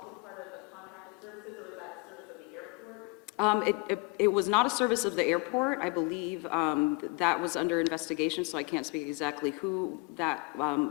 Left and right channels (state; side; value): quieter; right; 28.3 dB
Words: part of the contracted services, or was that service of the airport? It was not a service of the airport. I believe that was under investigation, so I can't speak exactly who